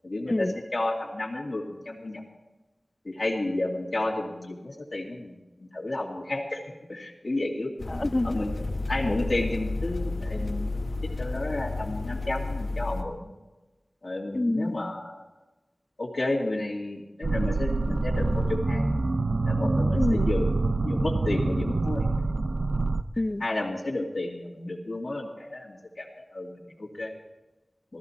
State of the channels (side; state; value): both; normal; correlation 0.95